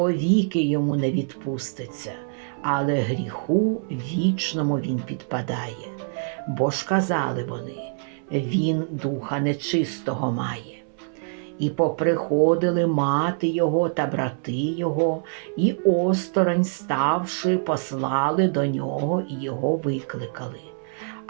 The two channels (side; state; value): left; silent; 62 dB below the other